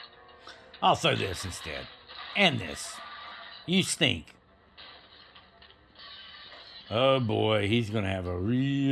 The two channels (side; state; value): both; identical; correlation 1.00